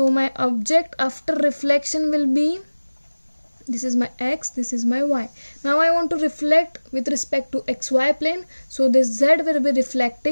my object after reflection will be, this is my X, this is my Y. Now I want to reflect with respect to XY plane, so this Z will be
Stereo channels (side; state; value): both; inverted; correlation -1.00